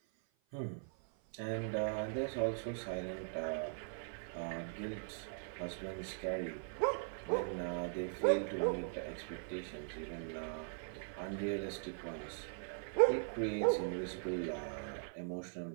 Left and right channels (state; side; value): silent; left; 51 dB below the other